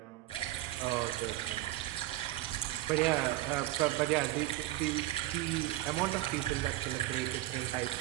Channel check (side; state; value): left; quieter; 16.4 dB